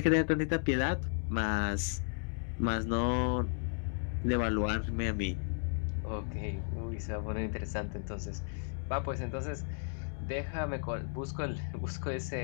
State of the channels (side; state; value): right; silent; 55 dB below the other